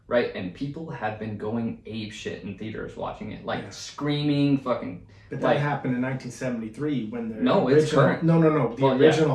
right? And people have been going ape shit in theaters watching it, like screaming, fucking. But that happened in 1973 when the it's current. No. The Well,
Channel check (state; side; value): identical; both; correlation 1.00